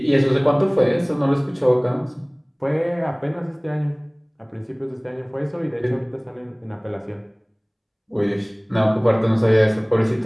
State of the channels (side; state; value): both; identical; correlation 1.00